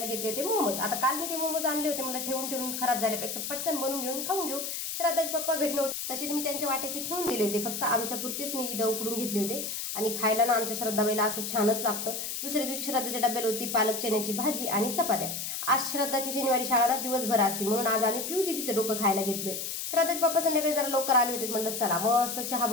घेतले होते मोमोज. आता काल मी ते मोमोज आणले होते. मला ठेवून ठेवून खराब झाल्यापेक्षा पटकन बनवून घेऊन खाऊन घेऊ. श्राद्धाचे पप्पा घरी नव्हते. तसे मी त्यांच्या वाट्याचे ठेवून दिले होते. फक्त आमच्यापुरतेच मी इथं उकडून घेतले होते आणि खायला ना आमच्या श्रद्धाबाईला असं छानच लागतं. दुसऱ्या दिवशी श्रद्धाच्या डब्याला होती पालक चण्याची भाजी आणि चपात्या. आज श्रद्धाची शनिवारी शाळा ना दिवसभर असते म्हणून आज आम्ही पिऊ दिदीचं डोकं खायला घेतलोय. श्रद्धाचे पप्पा संध्याकाळी जरा लवकर आले होते. म्हणलं चला मस्त चहा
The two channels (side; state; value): left; noise; hiss, 4 dB below the sound